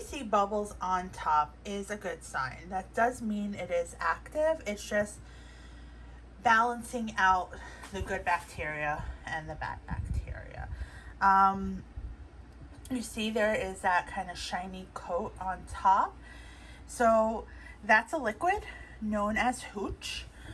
see bubbles on top is a good sign. That does mean it is active. It's just balancing out the good bacteria and the bad bacteria. You see there is that kind of shiny coat on top. So that's a liquid known as hooch,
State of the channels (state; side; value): identical; both; correlation 1.00